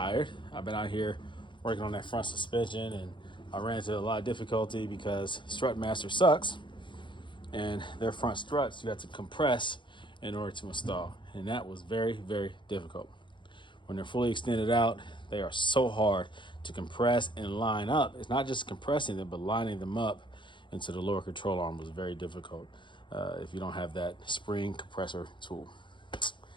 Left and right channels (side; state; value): right; late; 0.23 ms